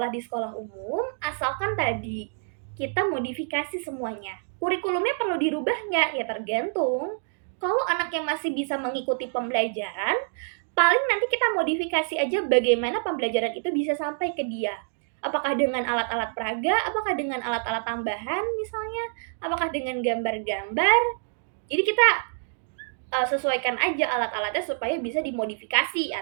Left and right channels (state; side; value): silent; left; digital silence